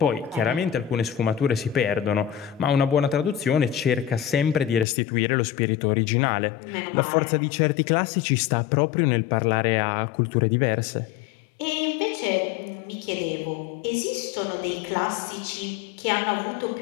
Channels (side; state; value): right; drops out; at 4.9 s